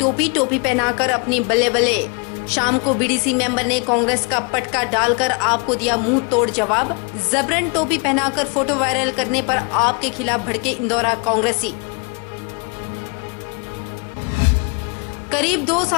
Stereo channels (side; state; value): right; quieter; 34.8 dB